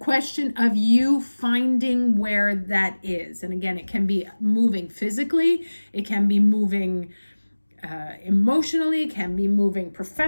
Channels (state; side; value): inverted; both; correlation -1.00